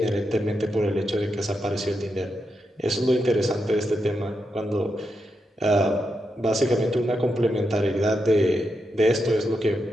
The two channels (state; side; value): normal; both; correlation 0.85